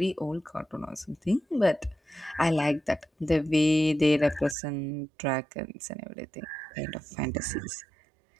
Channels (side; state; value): left; drops out; at 4.5 s